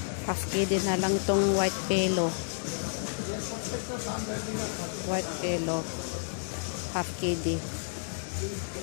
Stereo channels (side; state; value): right; silent; digital silence